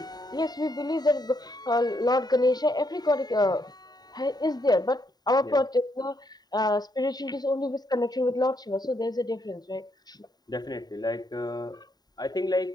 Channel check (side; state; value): right; late; 0.20 ms